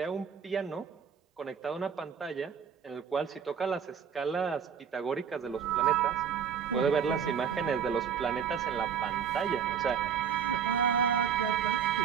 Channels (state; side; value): quieter; left; 7.5 dB